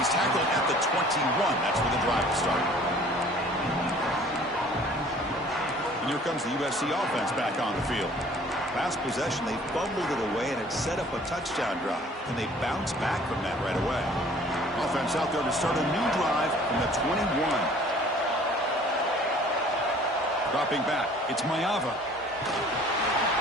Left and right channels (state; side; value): normal; both; correlation 0.52